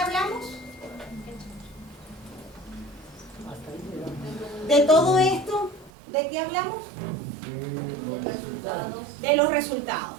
hablamos? De todo esto, ¿de qué hablamos? De resultados. De los resultados.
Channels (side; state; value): left; drops out; at 5.9 s